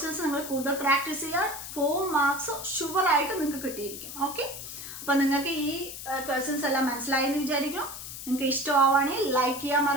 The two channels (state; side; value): noise; left; hiss, 10 dB below the sound